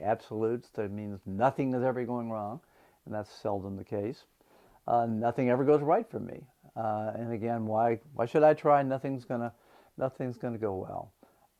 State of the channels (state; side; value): identical; both; correlation 1.00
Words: absolutes. That means nothing is ever going wrong, and that's seldom the case. Nothing ever goes right for me. And again, why should I try? Nothing's gonna go